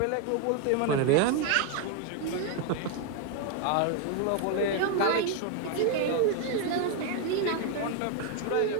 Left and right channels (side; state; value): both; different; correlation 0.00